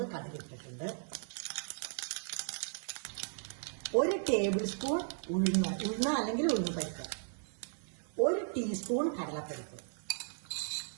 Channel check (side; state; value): left; silent; 54 dB below the other